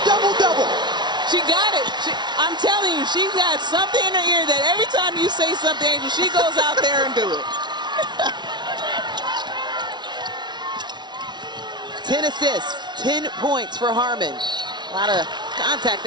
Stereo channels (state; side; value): late; left; 0.21 ms